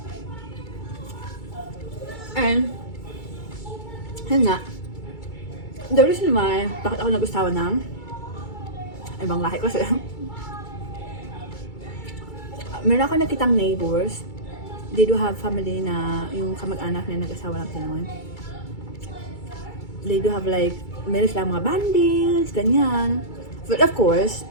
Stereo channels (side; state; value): right; late; 2.3 ms